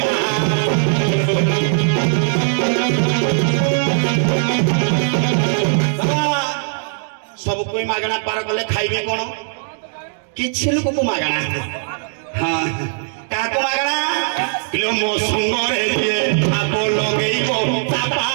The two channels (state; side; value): silent; left; digital silence